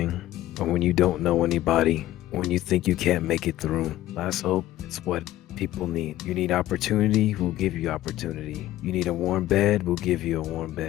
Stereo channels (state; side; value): quieter; right; 14.9 dB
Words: or when you don't know anybody, when you think you can't make it through. Last hope, it's what people need. You need opportunity, we'll give you opportunity. You need a warm bed, we'll give you a warm